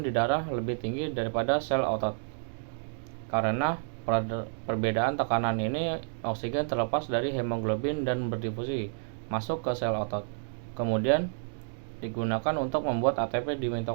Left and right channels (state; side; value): silent; left; digital silence